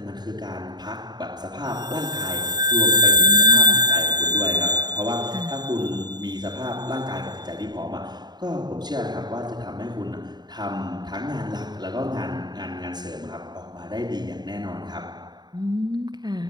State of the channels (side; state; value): left; late; 0.20 ms